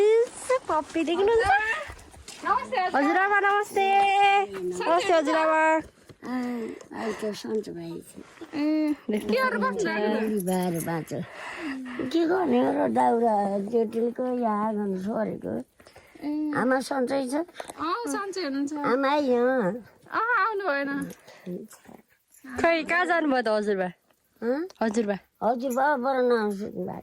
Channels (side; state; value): both; identical; correlation 1.00